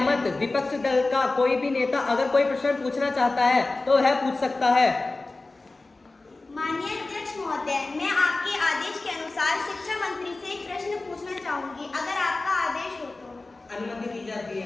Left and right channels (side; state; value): right; quieter; 3.3 dB